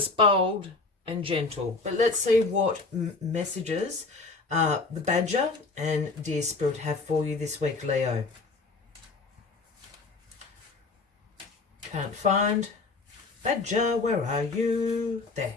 bold, and gentle. But let's see what messages the Badger and Dear Spirit have for you this week, Leo. Can't find Badger, where are you? There.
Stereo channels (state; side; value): quieter; right; 3.9 dB